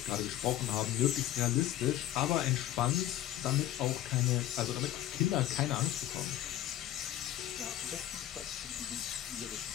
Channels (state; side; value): quieter; right; 13.0 dB